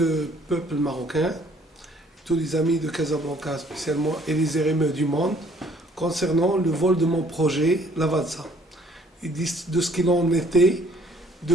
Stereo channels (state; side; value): normal; both; correlation 0.60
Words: peuple marocain, tous les amis de Casablanca spécialement et les RME du monde concernant le vol de mon projet Lavazza et de ce qu'il en était